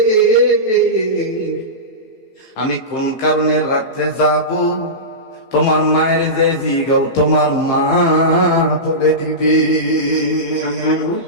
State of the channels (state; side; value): late; right; 15 ms